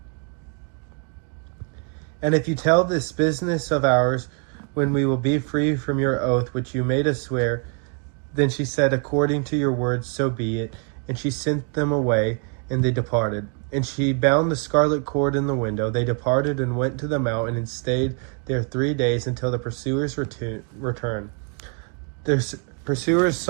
And if you tell this business of ours, when we will be free from your oath which you made us swear. Then she said, According to your words, so be it. And she sent them away, and they departed. And she bound the scarlet cord in the window. They departed and went to the mountain, and stayed there 3 days, until the pursuers returned. Their pursuers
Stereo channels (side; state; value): left; quieter; 37.4 dB